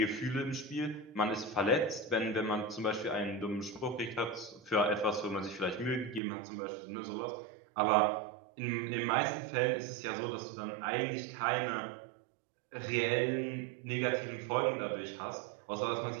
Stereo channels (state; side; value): drops out; left; at 6.2 s